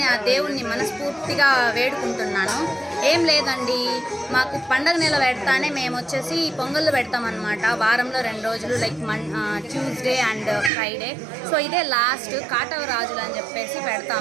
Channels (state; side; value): drops out; left; at 10.7 s